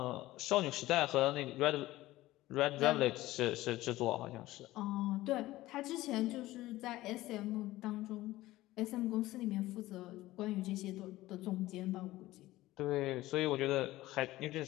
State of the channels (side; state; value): right; quieter; 17.0 dB